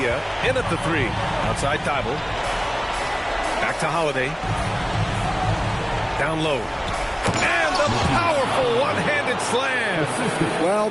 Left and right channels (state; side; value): identical; both; correlation 1.00